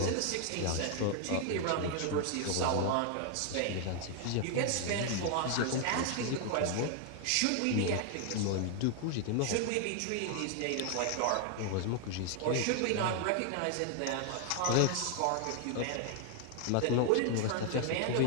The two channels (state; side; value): different; both; correlation 0.00